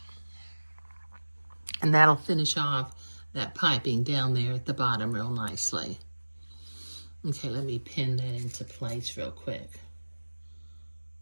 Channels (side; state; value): both; inverted; correlation -1.00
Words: And that'll finish off that piping down there at the bottom real nicely. Okay, let me pin that into place real quick.